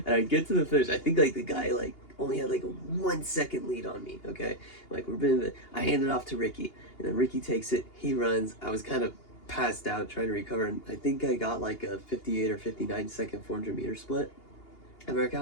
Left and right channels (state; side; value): late; right; 2.8 ms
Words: And I get to the finish. I think like the guy like only had like a 1 second lead on me. Okay, like I hand it off to Ricky, and then Ricky takes it. He runs. I was kind of passed out trying to recover, and I think I got like a 58 or 59 second 400 meter split. And America